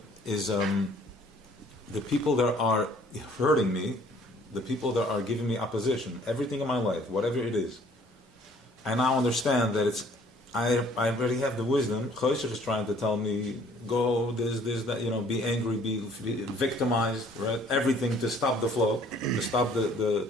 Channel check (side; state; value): both; normal; correlation 0.57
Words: is the people that are hurting me, the people that are giving me opposition, everything in my life, whatever it is. I now understand that I already have the wisdom. Chosech is trying to tell me, go this, that, be angry, be victimized, right? Everything to stop the flow, to stop